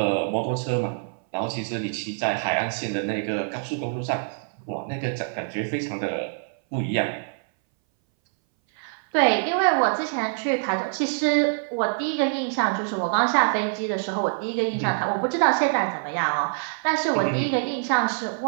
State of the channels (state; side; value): silent; left; 60 dB below the other